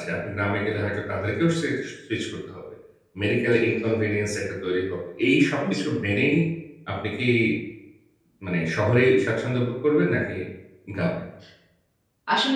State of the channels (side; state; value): both; identical; correlation 1.00